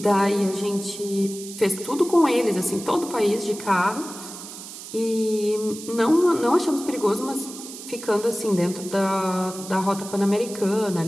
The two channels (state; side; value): noise; right; hiss, 13 dB below the sound